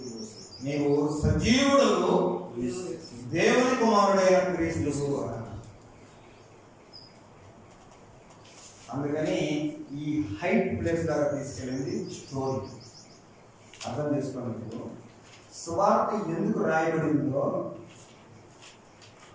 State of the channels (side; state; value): both; identical; correlation 1.00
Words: నీవు సజీవుడు దేవుని కుమారుడైన క్రీస్తు. అందుకని ఈ హైట్ ప్లేస్ దాకా తీసుకెళ్ళింది స్టోరీ. అర్థం చేసుకోండి. సువార్త ఎందుకు రాయబడిందో,